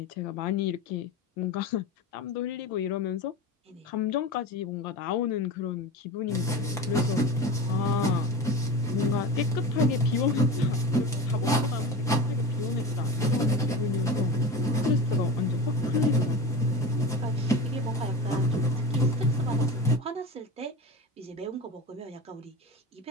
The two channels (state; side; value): normal; both; correlation 0.28